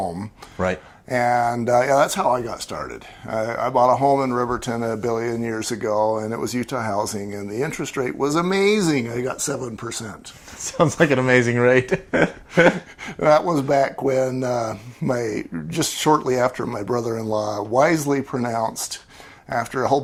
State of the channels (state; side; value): identical; both; correlation 1.00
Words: Right. And yeah, that's how I got started. I bought a home in Riverton a billion years ago, and it was Utah housing, and the interest rate was amazing. I got 7%. Sounds like an amazing rate. That was back when just shortly after my brother-in-law wisely pronounced, after a whole